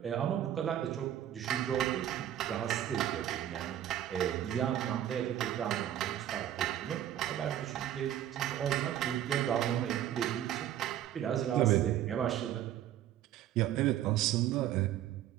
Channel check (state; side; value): quieter; left; 11.5 dB